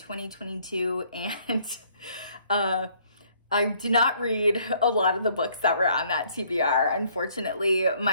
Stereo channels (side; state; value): both; inverted; correlation -0.63